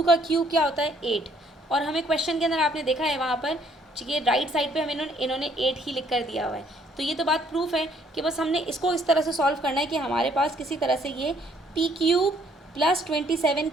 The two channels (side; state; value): both; normal; correlation 0.64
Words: का क्यूब क्या होता है 8। और हमें क्वेश्चन के अंदर आपने देखा है वहाँ पर ये राइट साइड पे हमें इन्होंने 8 ही लिख कर दिया हुआ है। तो ये तो बात प्रूफ है कि बस हमने इसको इस तरह से सॉल्व करना है कि हमारे पास किसी तरह से ये p³ +